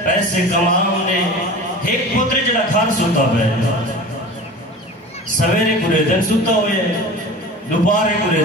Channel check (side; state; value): both; normal; correlation 0.36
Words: پیسے کماؤں دے، ایک پتر جڑا گھر سوتا بے، سویرے پورے دن سوتا ہوئے، دوپہرے پورے